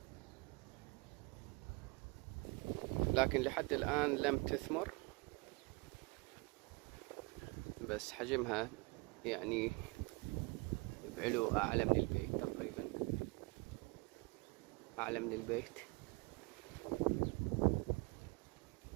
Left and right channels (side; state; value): left; quieter; 26.9 dB